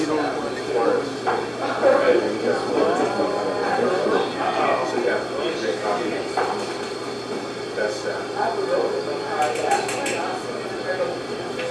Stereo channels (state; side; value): identical; both; correlation 1.00